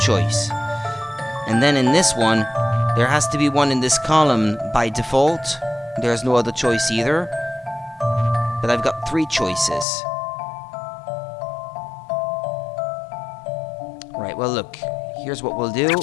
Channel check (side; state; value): right; drops out; at 9.9 s